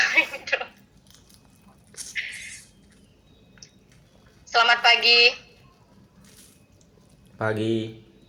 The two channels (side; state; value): both; identical; correlation 1.00